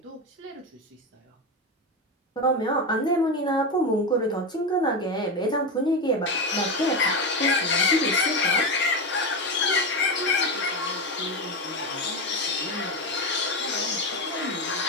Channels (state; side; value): normal; both; correlation 0.15